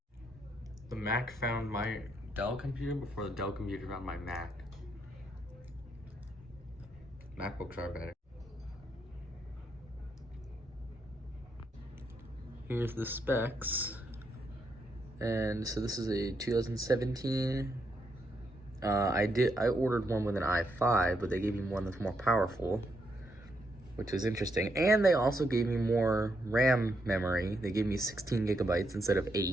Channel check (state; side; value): normal; both; correlation 0.78